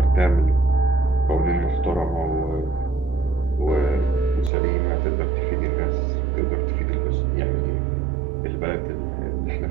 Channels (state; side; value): drops out; left; at 4.5 s